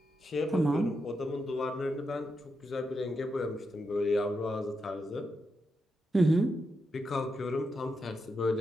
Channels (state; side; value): normal; both; correlation 0.85